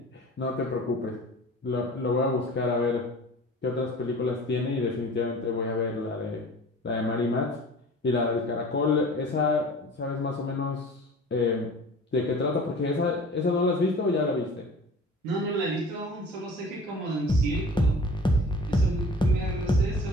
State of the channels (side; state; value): both; normal; correlation 0.42